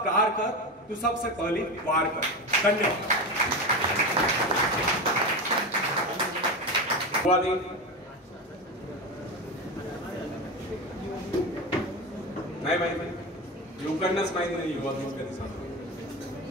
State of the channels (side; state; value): both; normal; correlation 0.21